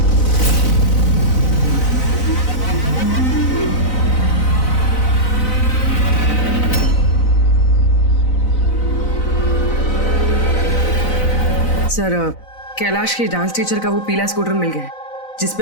सर कैलाश की डांस टीचर का वो पीला स्कूटर मिल गया है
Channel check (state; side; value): late; right; 4.0 ms